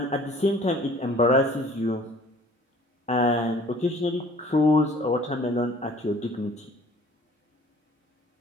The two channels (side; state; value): both; normal; correlation 0.52